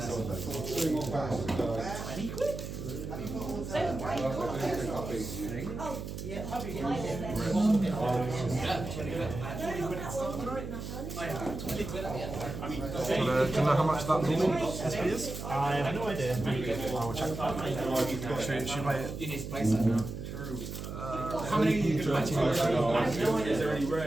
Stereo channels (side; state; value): right; noise; hum, 7 dB below the sound